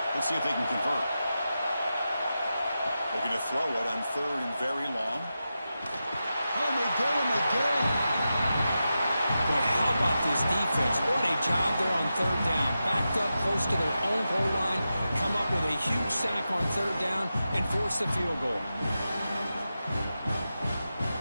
Let's see if they can convert. They're going to throw it on 3rd and very long. Oh, they get him again. Boy, how about this defense? What a job there on 3rd down. Backed up close to their own goal line, come up with a huge sack on 3rd down, and force the field goal.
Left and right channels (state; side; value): inverted; both; correlation -0.91